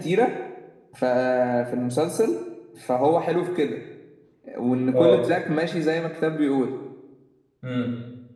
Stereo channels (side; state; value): both; identical; correlation 1.00